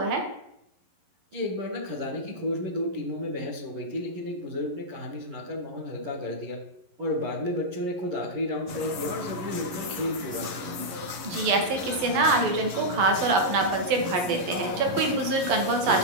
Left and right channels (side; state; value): left; late; 11 ms